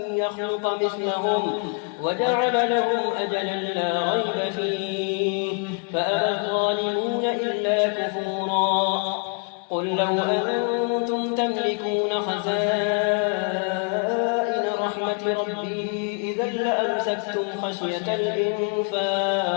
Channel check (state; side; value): quieter; right; 38.9 dB